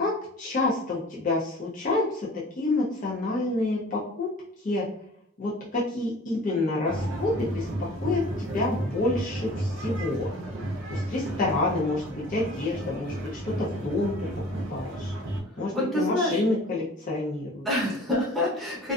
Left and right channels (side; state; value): both; normal; correlation 0.46